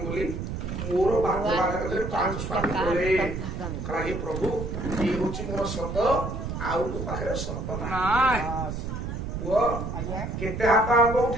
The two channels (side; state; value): right; noise; rumble, 5 dB below the sound